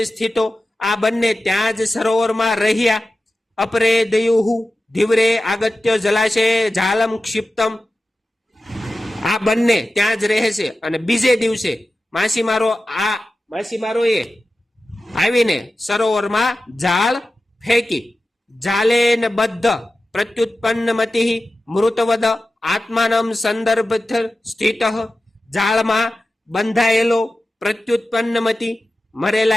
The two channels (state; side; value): normal; both; correlation 0.94